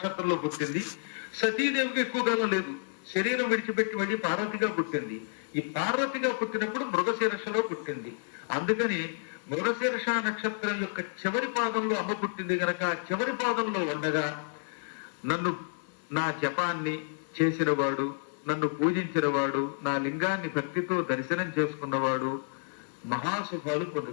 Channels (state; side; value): silent; right; digital silence